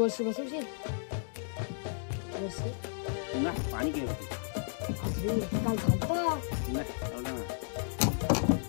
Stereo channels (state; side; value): silent; right; digital silence